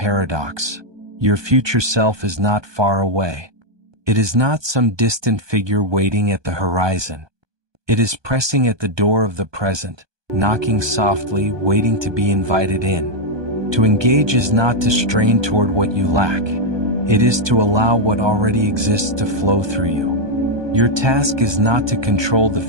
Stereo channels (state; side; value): late; left; 1.2 ms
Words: Your future self is not far away. It is not some distant figure waiting at the horizon. It is pressing at the door of the present, knocking softly, waiting to be invited in. To engage is not to strain toward what you lack. It is to allow what already exists to flow through you. Your task is not to control the